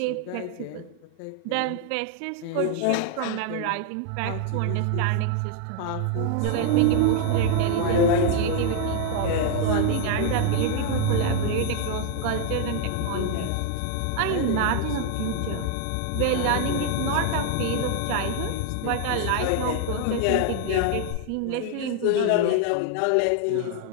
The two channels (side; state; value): both; different; correlation 0.00